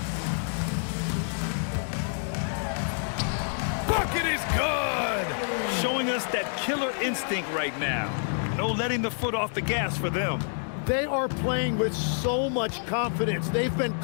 Bucket is good! Showing us that killer instinct right now. No letting the foot off the gas for them. They are playing with so much confidence. They've been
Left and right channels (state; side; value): silent; right; digital silence